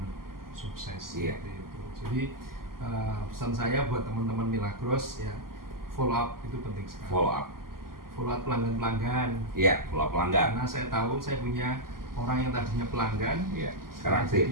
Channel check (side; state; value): left; late; 0.92 ms